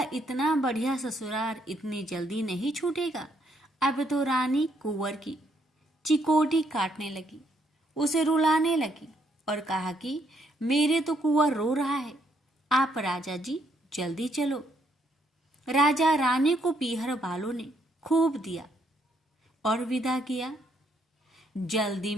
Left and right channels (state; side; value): normal; both; correlation 0.72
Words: इतना बढ़िया ससुराल इतनी जल्दी नहीं छूटेगा। अब तो रानी कुंवर की चिकोटी काटने लगी, उसे रुलाने लगी और कहा कि मेरे तो कुंवर रो रहा है, आप राजा जी जल्दी चलो। राजा रानी को पीहर वालों ने खूब दिया और विदा किया। जल्दी